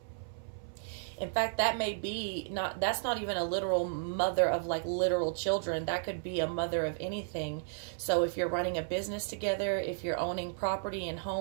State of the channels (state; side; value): silent; left; 55 dB below the other